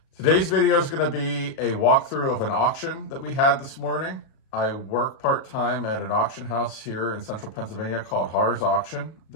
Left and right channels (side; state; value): right; late; 37 ms